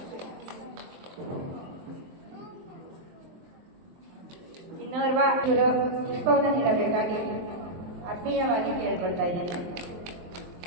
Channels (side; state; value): left; late; 23 ms